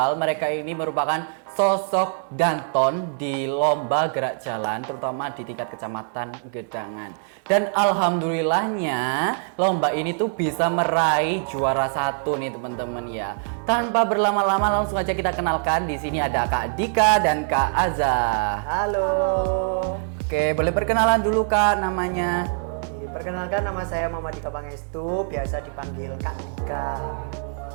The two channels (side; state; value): left; silent; 63 dB below the other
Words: Mereka ini merupakan sosok Danton di lomba gerak jalan, terutama di tingkat kecamatan Gedangan. Dan alhamdulillahnya lomba ini tuh bisa meraih juara 1 nih teman-teman ya. Tanpa berlama-lama langsung aja kita kenalkan. Di sini ada Kak Dika dan Kak Aza. Halo. Oke, boleh perkenalan dulu Kak namanya. Perkenalkan, nama saya Muhammad Dika Pangestu, biasa dipanggil Kak Dika.